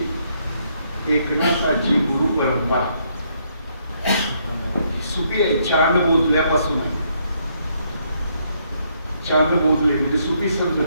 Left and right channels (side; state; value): both; inverted; correlation -0.72